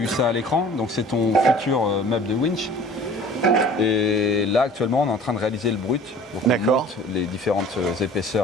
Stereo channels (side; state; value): both; normal; correlation 0.47